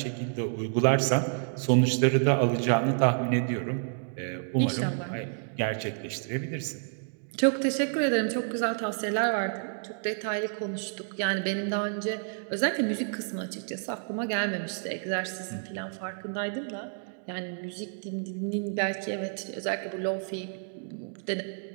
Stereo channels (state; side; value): silent; left; digital silence